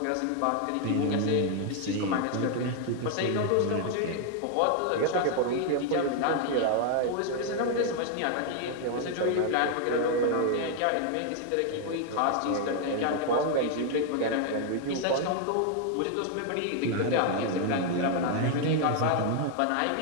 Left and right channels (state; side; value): different; both; correlation 0.00